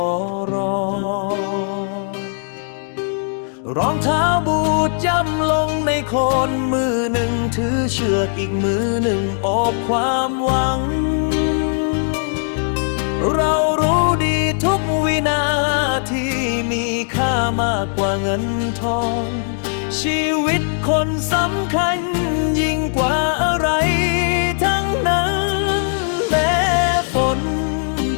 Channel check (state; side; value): silent; right; digital silence